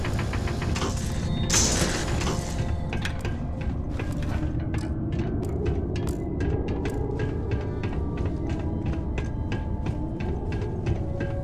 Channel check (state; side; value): identical; both; correlation 1.00